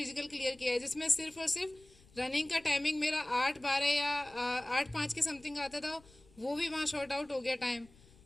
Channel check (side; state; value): left; noise; rumble, 26 dB below the sound